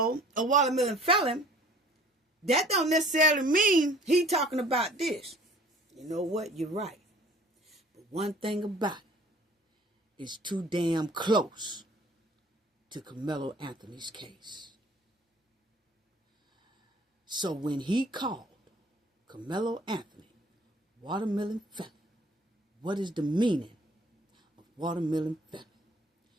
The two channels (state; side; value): normal; both; correlation 0.51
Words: a watermelon felon, that don't necessarily mean he talking about this. You know what? You're right. But one thing about it is too damn close to Karmelo Anthony's case. So when he called Karmelo Anthony watermelon felon, what is the meaning of watermelon felon?